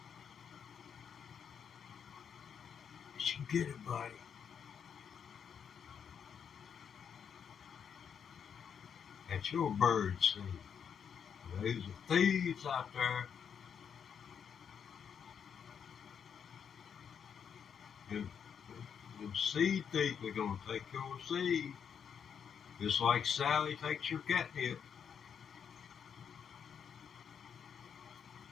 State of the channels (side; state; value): right; quieter; 7.5 dB